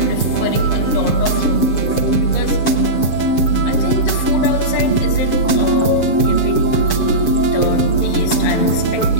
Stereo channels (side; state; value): right; late; 7.0 ms